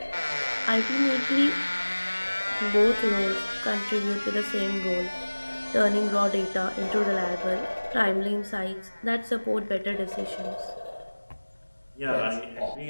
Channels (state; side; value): inverted; both; correlation -1.00